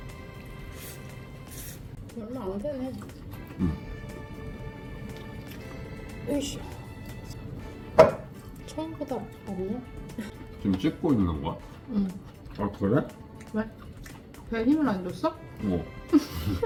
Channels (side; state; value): both; identical; correlation 1.00